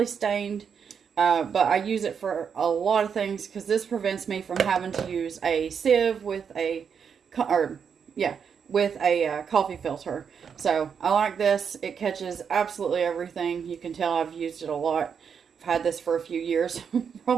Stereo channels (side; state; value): left; quieter; 6.9 dB